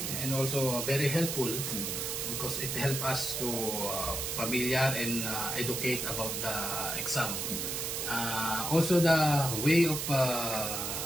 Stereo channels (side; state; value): right; noise; hiss, 2 dB below the sound